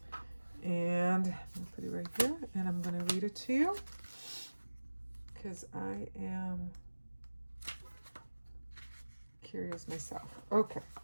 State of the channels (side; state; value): both; inverted; correlation -1.00